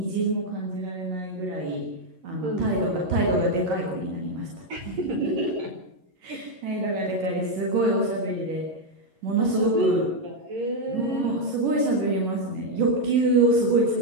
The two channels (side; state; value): left; late; 11 ms